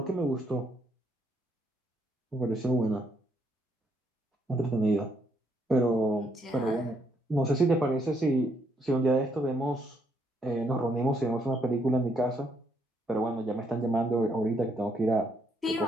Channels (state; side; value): normal; both; correlation 0.73